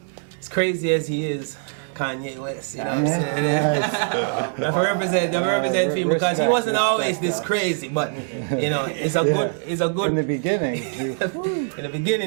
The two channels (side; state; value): left; silent; digital silence